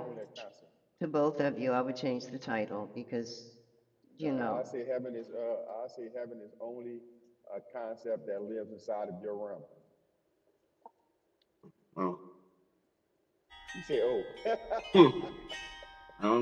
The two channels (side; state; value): both; identical; correlation 1.00